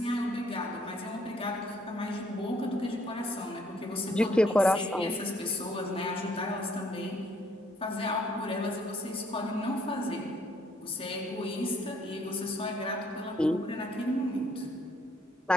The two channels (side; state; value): both; normal; correlation 0.66